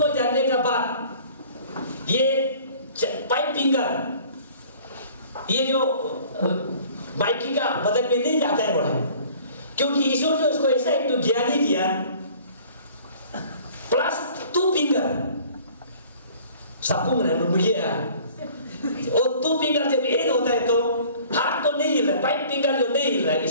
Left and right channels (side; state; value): both; inverted; correlation -0.50